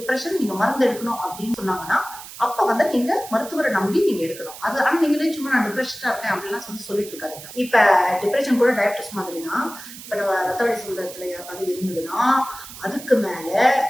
நீங்க மருந்து எடுக்கணும் அப்படின்னு சொன்னாங்கன்னா அப்ப நீங்க மருத்துவரை நம்பி நீங்க எடுக்கணும். அது ஆனா நீங்களே சும்மா நான் டிப்ரெஷனா இருக்கேன் அப்படிலாம் சொல்லிட்டு இருக்காதீங்க. இப்ப டிப்ரெஷன் கூட டயபிட்டிஸ் மாதிரி தான். இப்ப நம்ம ரத்த வழி சுந்தரத்துல யாருக்காவது இருந்ததுன்னா அதுக்கு மேல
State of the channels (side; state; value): right; noise; hiss, 14 dB below the sound